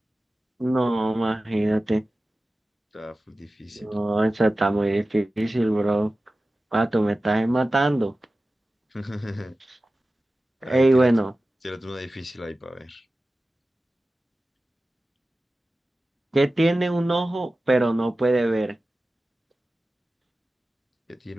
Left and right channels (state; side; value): normal; both; correlation 0.95